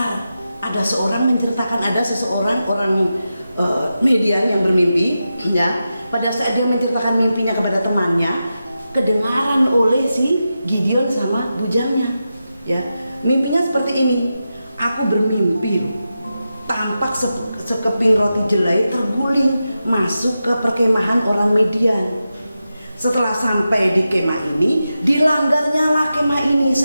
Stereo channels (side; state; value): both; inverted; correlation -0.90